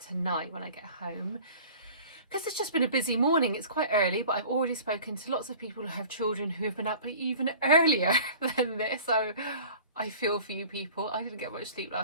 tonight when I get home, because it's just been a busy morning. It's quite early, but I've already spoken to lots of people who have children who have been up even earlier than this. So I feel for you people. I didn't get much sleep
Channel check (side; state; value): both; inverted; correlation -0.44